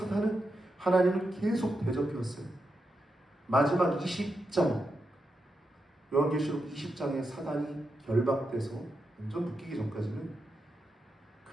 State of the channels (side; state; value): both; normal; correlation 0.86